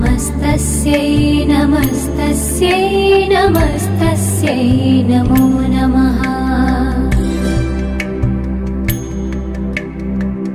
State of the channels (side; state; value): both; identical; correlation 1.00